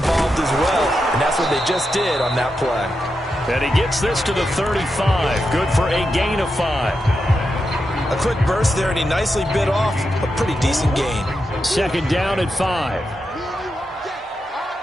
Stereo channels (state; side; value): normal; both; correlation 0.87